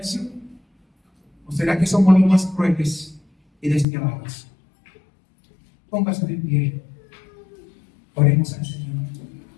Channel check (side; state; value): right; drops out; at 3.9 s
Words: ¿O será que somos los más crueles y despiadados? Póngase de pie. Oremos al Señor.